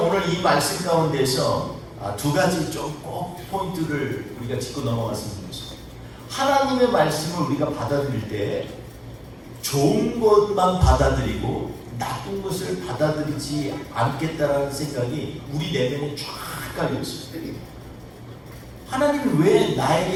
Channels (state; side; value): identical; both; correlation 1.00